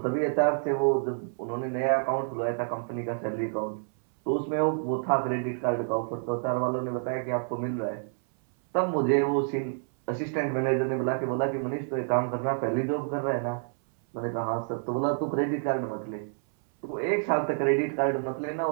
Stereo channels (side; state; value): left; silent; 59 dB below the other